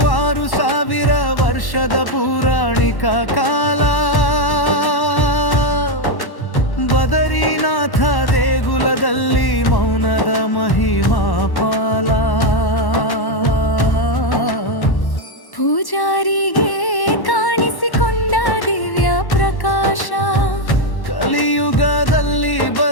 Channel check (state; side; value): late; right; 1.1 ms